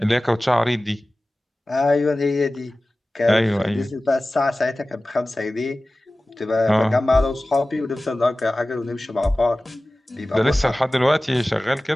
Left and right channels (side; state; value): both; normal; correlation 0.97